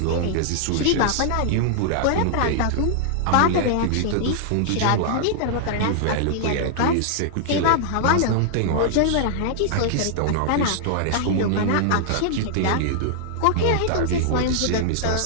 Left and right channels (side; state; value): both; different; correlation -0.01